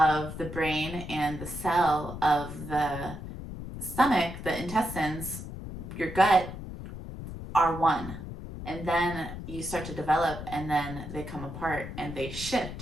the brain and the cell of the stomach, the intestines, your gut, are one. And then you start to develop and then they come apart and they shift.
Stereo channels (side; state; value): left; noise; rumble, 9 dB below the sound